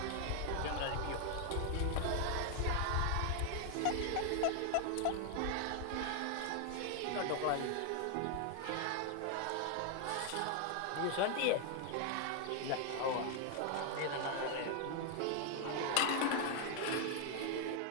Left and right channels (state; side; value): different; both; correlation 0.00